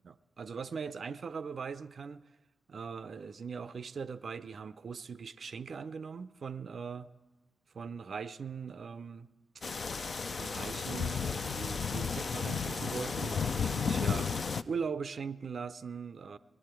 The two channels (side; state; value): both; normal; correlation 0.78